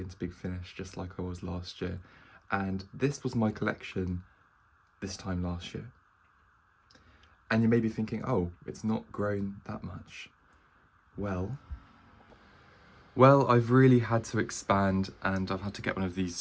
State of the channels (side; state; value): both; identical; correlation 1.00